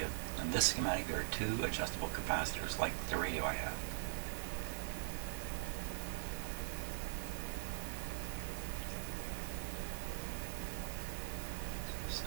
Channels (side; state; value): left; silent; digital silence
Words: in this schematic there are 2 adjustable capacitors like the radio I have.